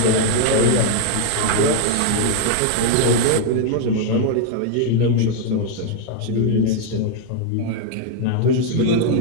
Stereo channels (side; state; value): both; different; correlation 0.00